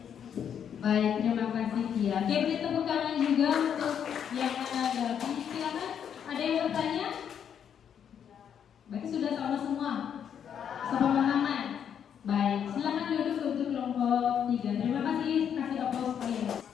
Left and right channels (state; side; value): quieter; right; 8.4 dB